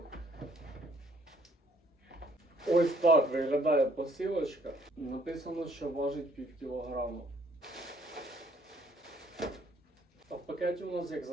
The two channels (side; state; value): both; normal; correlation 0.63